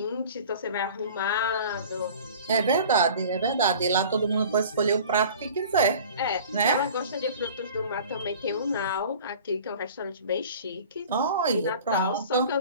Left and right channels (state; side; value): inverted; both; correlation -0.43